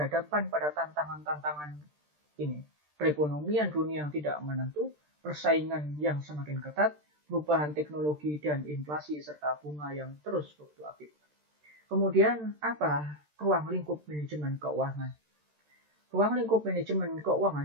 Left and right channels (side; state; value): left; late; 13 ms